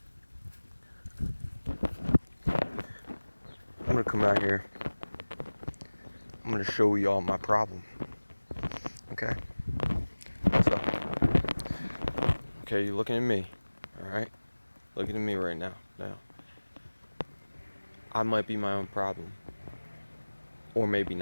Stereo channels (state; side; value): inverted; both; correlation -1.00